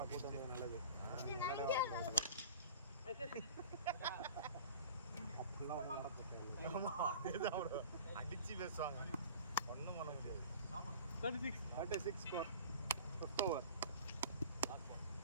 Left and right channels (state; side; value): inverted; both; correlation -0.41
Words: கூட்டு வந்தது நல்லது. அப்படிலாம் ஒன்றும் நடக்க அடிச்சு பேசுவாங்க. ஒன்றும் பண்ண முடியாது. 36 ஸ்கோர் 5th ஓவர்.